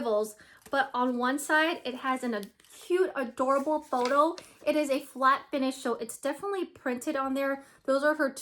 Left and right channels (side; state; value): both; identical; correlation 1.00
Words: but on one side it has a cute, adorable photo. It is a flat finish, so it's definitely printed on there. Those are her